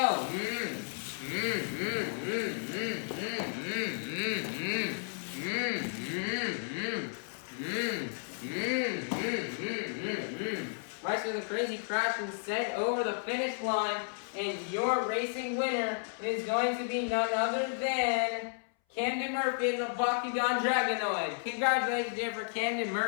Bryce with a crazy crash and sent over the finish line, and your racing winner is going to be none other than Camden Murphy and the Bakugan Dragonoid. Congratulations there for Camden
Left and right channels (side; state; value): right; silent; 56 dB below the other